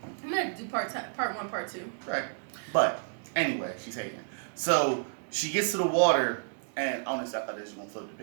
I'm gonna do part 1, part 2. Right. But anyway, she's hating. So she gets to the water, and honestly, I thought they was gonna float the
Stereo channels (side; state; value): left; silent; digital silence